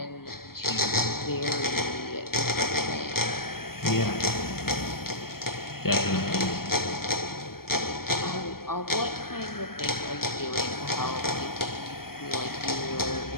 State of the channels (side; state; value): right; late; 0.93 ms